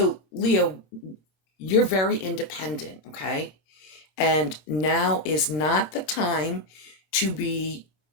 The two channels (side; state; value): right; late; 26 ms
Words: Leo, you're very independent, okay? And now is not the time to be